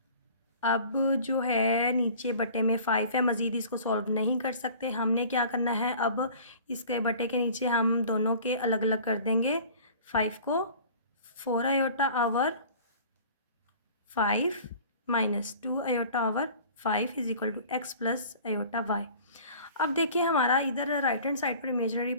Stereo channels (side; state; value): both; inverted; correlation -0.46